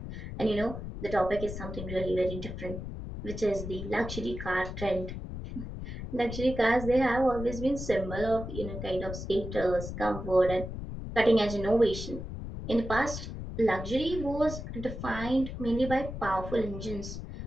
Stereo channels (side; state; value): left; noise; rumble, 8 dB below the sound